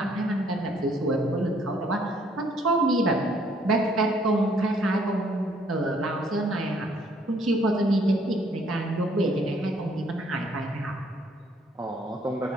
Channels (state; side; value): normal; both; correlation 0.64